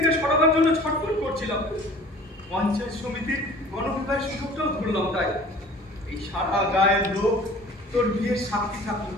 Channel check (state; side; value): normal; both; correlation 0.46